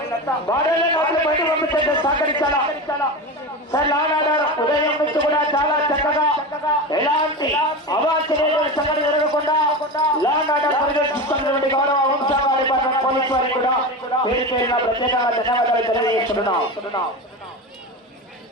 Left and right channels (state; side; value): normal; both; correlation 0.24